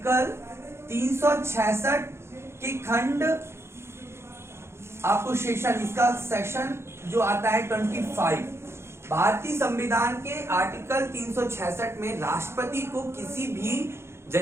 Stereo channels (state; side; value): late; left; 0.12 ms